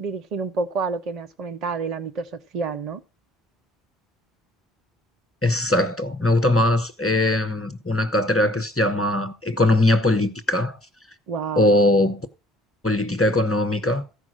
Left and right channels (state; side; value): normal; both; correlation 0.57